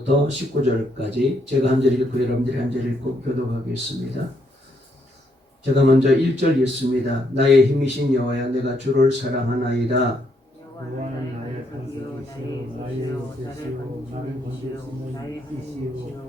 19절까지 제가 한 절 읽고 여러분들이 한 절 읽고 교독하겠습니다. 제가 먼저 1절 읽습니다. 나의 힘이신 여호와야, 내가 주를 사랑하나이다. 여호와는 나의 산이요 나의 빛이요 나를 감추는 이시요 나의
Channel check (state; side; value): normal; both; correlation 0.74